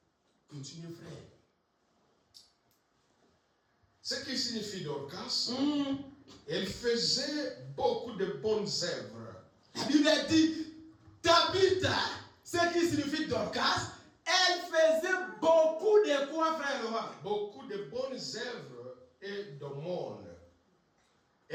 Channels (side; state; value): both; identical; correlation 1.00